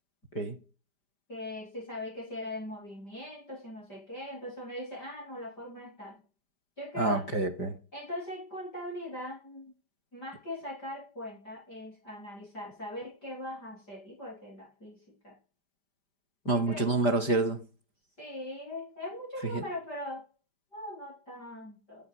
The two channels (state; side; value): late; right; 5.0 ms